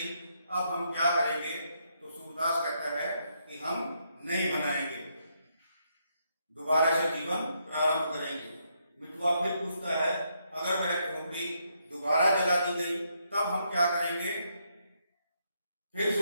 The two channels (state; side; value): inverted; both; correlation -0.77